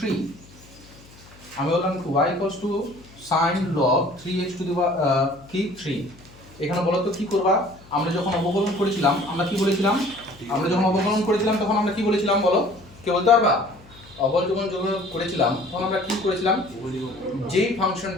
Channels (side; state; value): left; noise; hum, 23 dB below the sound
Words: আমি বললাম y equals two sin log 3x to দি কি 3। এখানে বলো তো কি করবা? আমরা যখন অবকলন করেছিলাম আমরা কি বলেছিলাম? আমরা যখন অবকলন করেছিলাম তখন আমরা কি বলেছিলাম বলো? কে বলতে পারবা? অবকলন যখন করেছিলাম তখন আমরা কি করেছিলাম? যেই